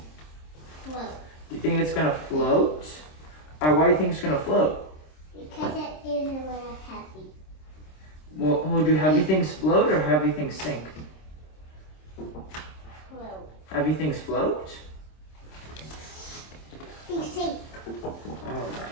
Float. Do you think it's going to float? Alright, why do you think it's going to float? Because it is a little heavy. Well, do heavy things float or heavy things sink? Float. Heavy things float? They sink.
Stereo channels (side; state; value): right; late; 26 ms